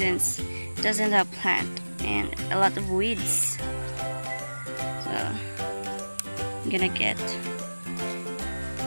it doesn't have plant and a lot of weeds. So I'm gonna get.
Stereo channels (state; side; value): inverted; both; correlation -1.00